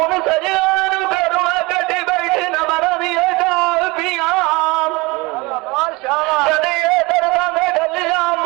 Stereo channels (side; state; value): left; quieter; 23.9 dB